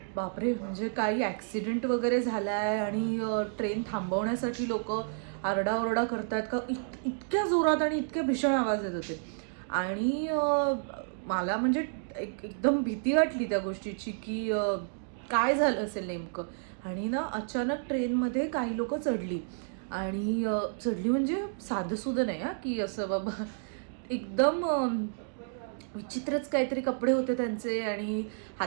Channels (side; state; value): left; silent; digital silence